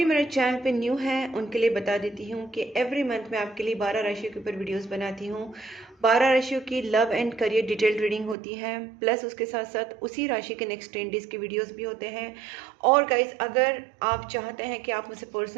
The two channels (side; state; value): left; drops out; at 8.3 s